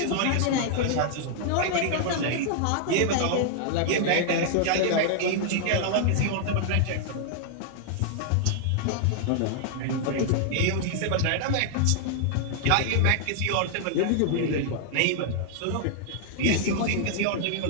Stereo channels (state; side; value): different; both; correlation -0.01